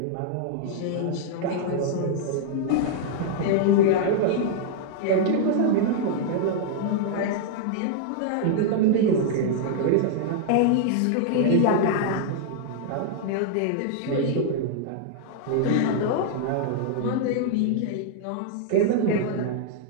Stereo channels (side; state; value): both; different; correlation -0.01